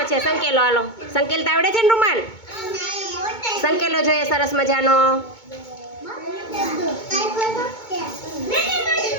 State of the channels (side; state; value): right; late; 2.2 ms